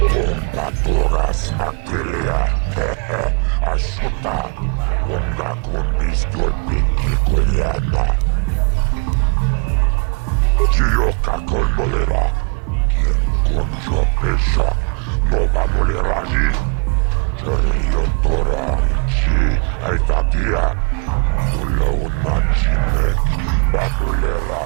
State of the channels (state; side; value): quieter; left; 36.3 dB